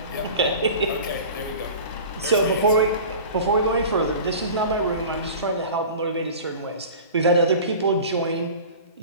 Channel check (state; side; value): inverted; both; correlation -0.38